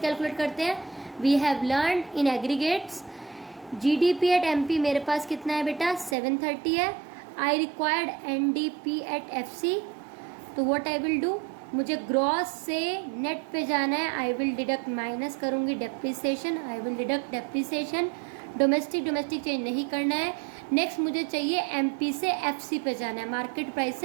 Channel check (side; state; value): left; drops out; at 6.2 s